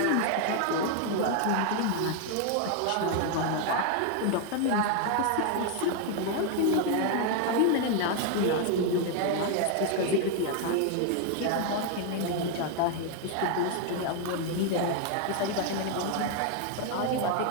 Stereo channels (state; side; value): different; both; correlation 0.01